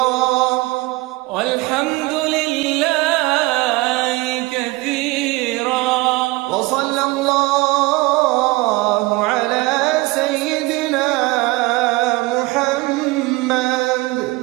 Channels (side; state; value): left; quieter; 22.4 dB